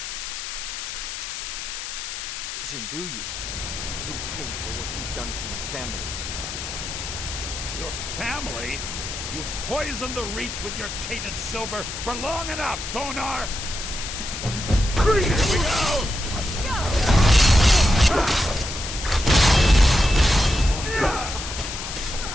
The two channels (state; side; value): noise; left; hiss, 7 dB below the sound